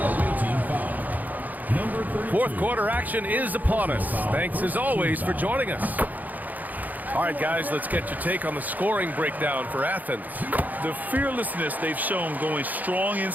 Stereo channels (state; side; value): late; left; 0.081 ms